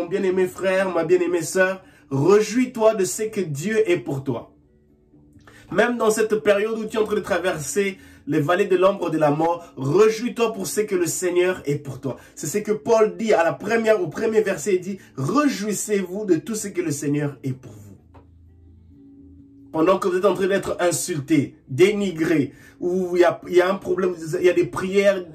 bien-aimé frère, ma bien-aimée sœur, Réjouis-toi de ce que Dieu est pour toi. Même dans cette période où tu es en train de traverser les vallées de l'ombre de la mort, réjouis-toi pour ce que le Seigneur est pour toi. C'est ce que Paul dit au premier verset, il dit, réjouissez-vous de tout ce que le Seigneur est pour vous. Pendant que vous êtes en train d'être insulté, dénigré, où il y a un problème, il y a des prières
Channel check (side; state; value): both; identical; correlation 1.00